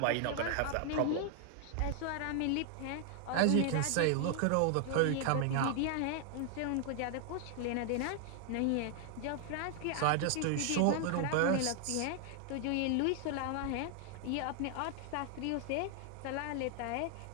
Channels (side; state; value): both; different; correlation 0.00